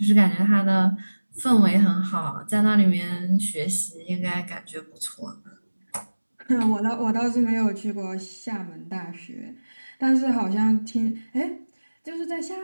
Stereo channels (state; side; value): inverted; both; correlation -1.00